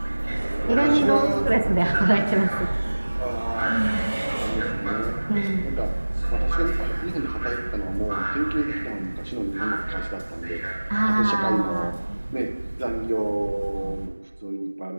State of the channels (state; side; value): inverted; both; correlation -1.00